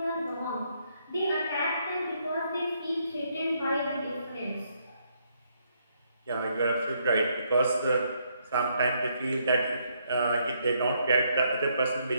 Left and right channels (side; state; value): both; inverted; correlation -0.73